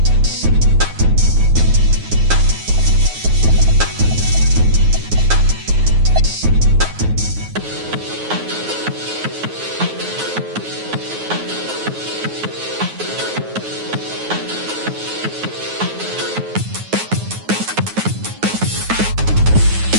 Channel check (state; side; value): late; left; 9.4 ms